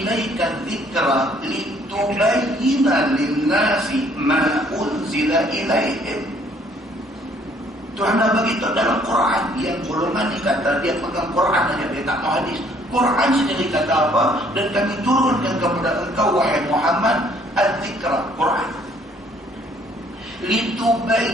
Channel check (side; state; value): both; normal; correlation 0.62